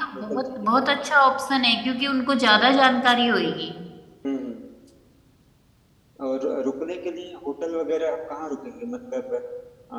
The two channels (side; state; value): both; identical; correlation 1.00